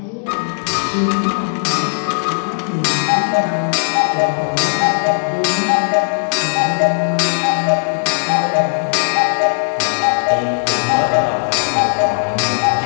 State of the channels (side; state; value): right; silent; 66 dB below the other